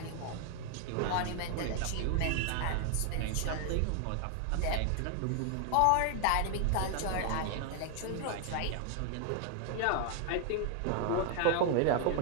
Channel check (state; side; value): different; both; correlation 0.00